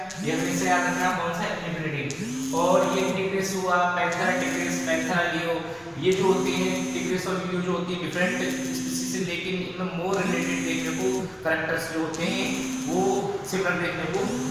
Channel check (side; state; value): both; identical; correlation 1.00